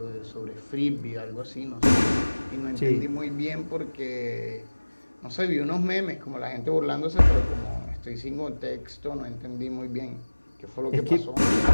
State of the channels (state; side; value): inverted; both; correlation -1.00